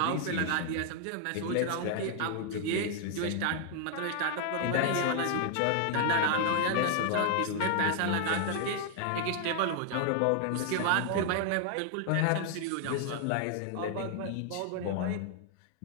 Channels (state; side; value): different; both; correlation 0.00